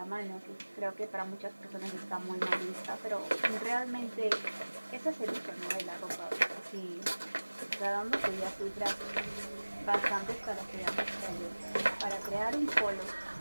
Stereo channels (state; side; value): inverted; both; correlation -1.00